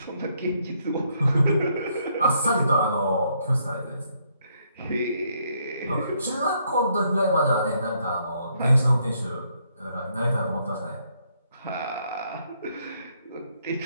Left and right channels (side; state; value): both; inverted; correlation -0.72